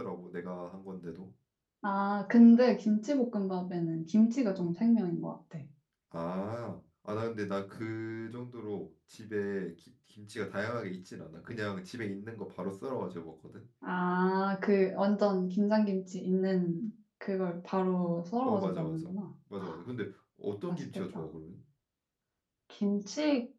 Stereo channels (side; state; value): both; identical; correlation 1.00